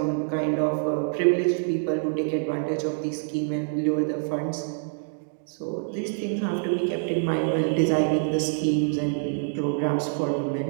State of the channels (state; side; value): silent; left; digital silence